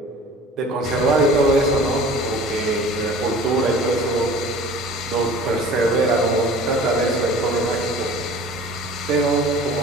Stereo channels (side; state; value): both; normal; correlation 0.44